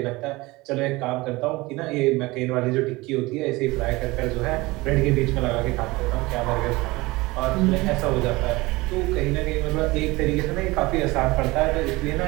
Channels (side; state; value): left; quieter; 21.7 dB